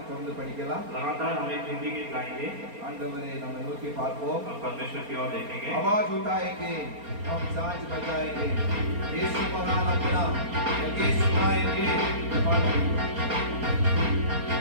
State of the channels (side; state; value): left; late; 4.3 ms